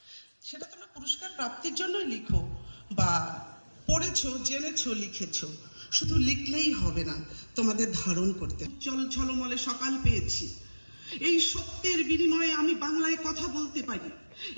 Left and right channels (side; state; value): both; inverted; correlation -1.00